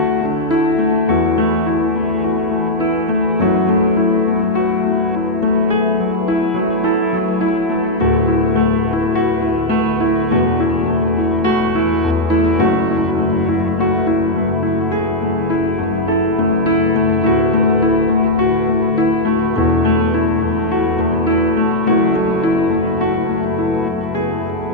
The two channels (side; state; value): both; normal; correlation -0.01